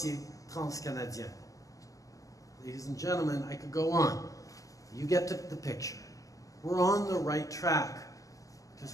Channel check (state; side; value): late; right; 0.16 ms